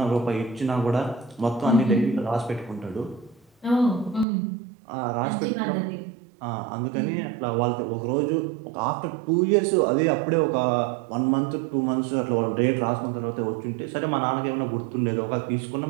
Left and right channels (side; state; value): left; drops out; at 4.2 s